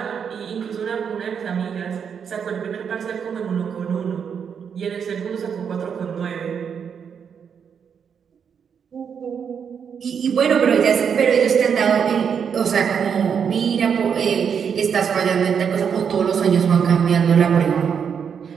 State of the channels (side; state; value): left; quieter; 7.2 dB